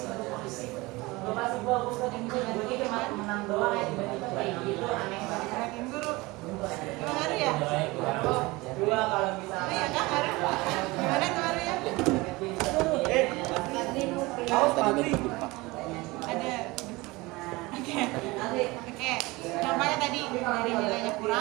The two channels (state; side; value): quieter; left; 22.3 dB